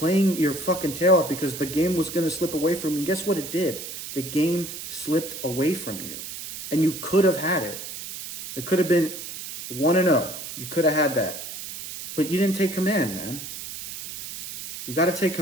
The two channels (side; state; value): right; noise; hiss, 9 dB below the sound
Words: your fucking tail off, because the game was going to slip away from you. And guess what it did? The game slipped away from you. And you could have had it. It could have been 1-0. You could have had that. But you didn't take command, man. You got to take